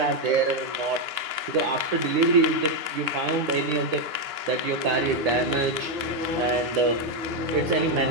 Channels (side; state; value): left; late; 9.7 ms